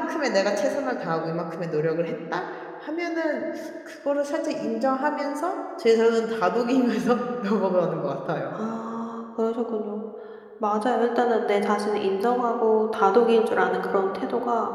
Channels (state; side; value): identical; both; correlation 1.00